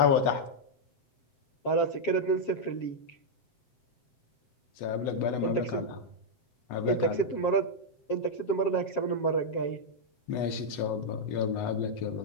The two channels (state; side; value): late; right; 7.5 ms